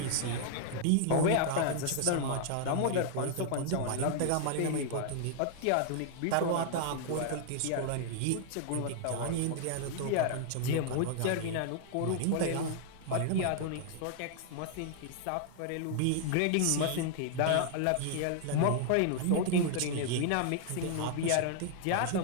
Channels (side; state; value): both; different; correlation 0.00